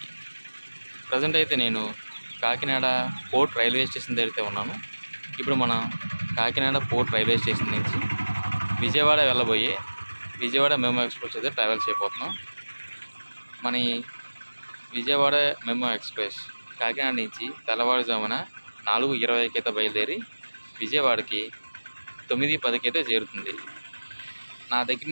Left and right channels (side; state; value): both; inverted; correlation -1.00